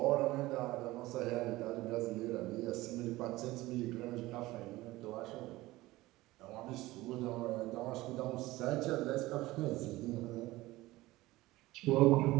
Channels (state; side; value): quieter; left; 18.6 dB